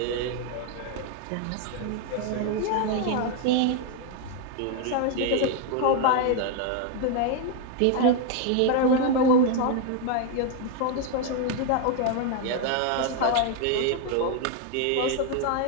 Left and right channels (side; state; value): both; different; correlation 0.01